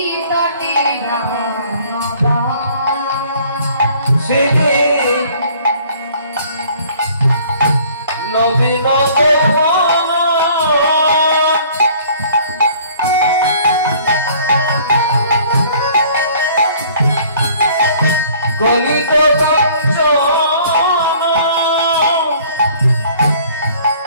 তটে সে নবীন গলিত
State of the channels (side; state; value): both; inverted; correlation -0.55